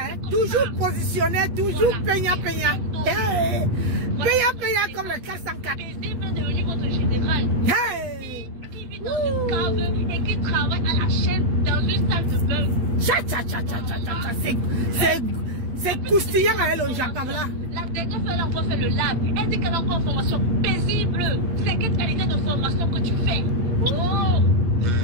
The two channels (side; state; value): left; late; 8.5 ms